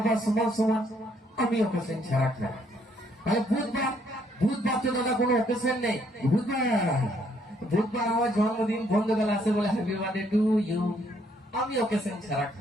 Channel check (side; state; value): both; normal; correlation 0.69